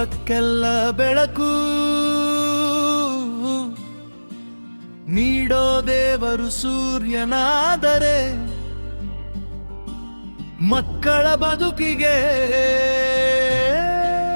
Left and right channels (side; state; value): both; inverted; correlation -1.00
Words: ಲೋಕಕ್ಕೆಲ್ಲ ಬೆಳಕು ನೀಡೋ ದೇವರು ಸೂರ್ಯನಾದರೆ ಮಕ್ಕಳ ಬದುಕಿಗೆ